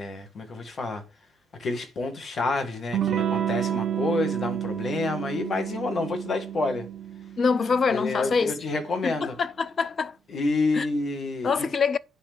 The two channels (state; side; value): normal; both; correlation 0.76